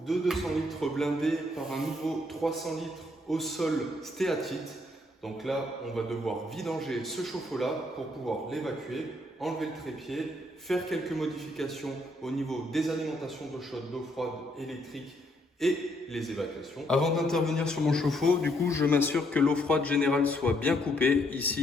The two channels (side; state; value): both; normal; correlation 0.72